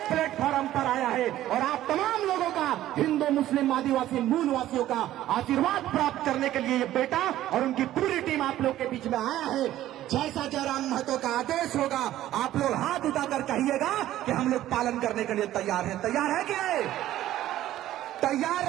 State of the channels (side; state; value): left; quieter; 13.6 dB